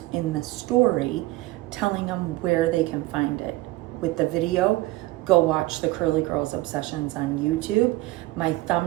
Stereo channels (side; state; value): left; quieter; 19.0 dB